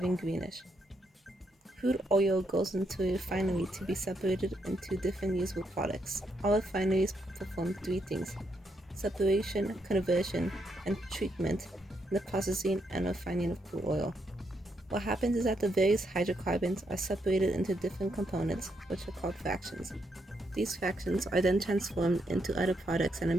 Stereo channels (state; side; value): normal; both; correlation 0.78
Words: greenish. Crude oil goes into a refinery to be separated into different usable products. All refineries perform three things: separation, conversion, and treatment in the processing and refining of crude oil. What happens is that the various hydrocarbons are separated into different components, which are called fractions. These fractions are then transformed into other products, and